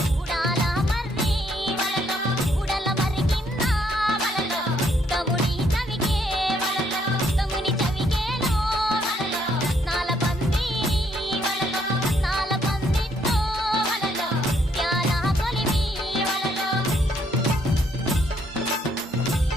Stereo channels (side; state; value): both; normal; correlation 0.70